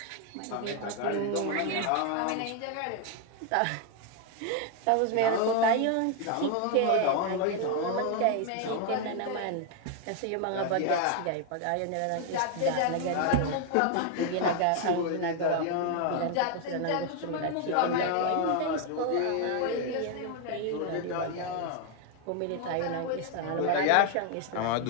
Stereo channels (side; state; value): both; different; correlation 0.01